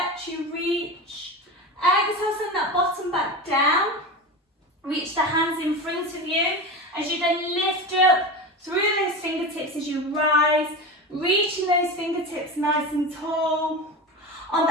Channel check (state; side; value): normal; both; correlation 0.25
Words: you reach. Exhale, send that bottom back down. Reach the hands in front of you As you then lift up through those fingertips as you rise, reaching those fingertips nice and tall. On the